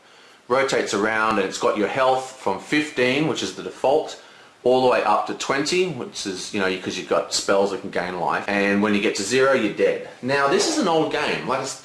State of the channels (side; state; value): both; identical; correlation 1.00